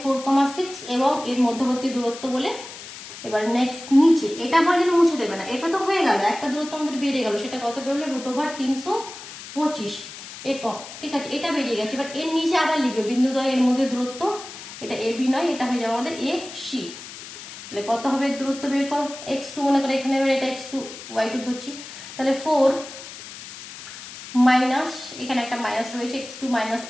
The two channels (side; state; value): left; noise; hiss, 13 dB below the sound